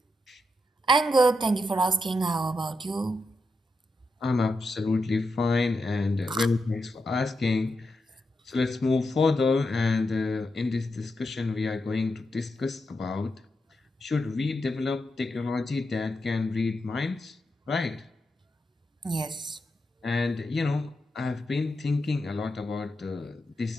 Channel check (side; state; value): both; normal; correlation 0.85